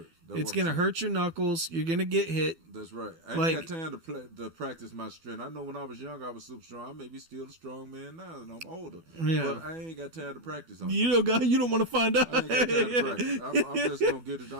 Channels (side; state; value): left; late; 12 ms